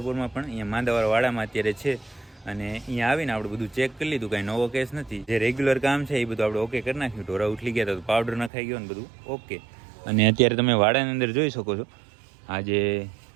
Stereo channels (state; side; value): drops out; left; at 8.5 s